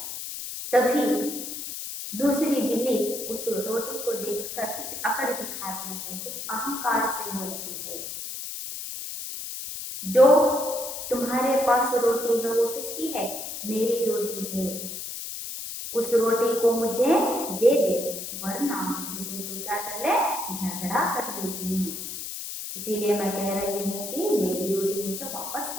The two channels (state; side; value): noise; left; hiss, 7 dB below the sound